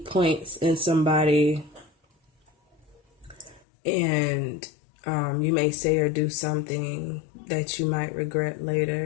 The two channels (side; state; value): right; drops out; at 3.6 s